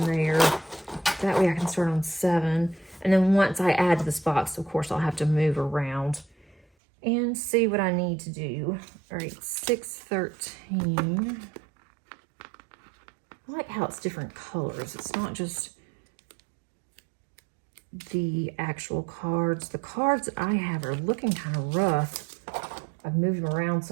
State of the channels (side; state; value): left; drops out; at 6.7 s